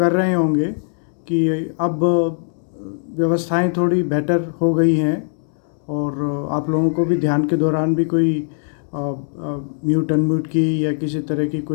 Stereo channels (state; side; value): silent; right; digital silence